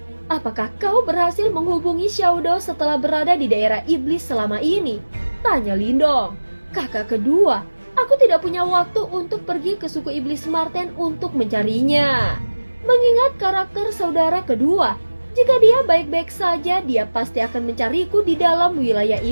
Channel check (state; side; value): inverted; both; correlation -1.00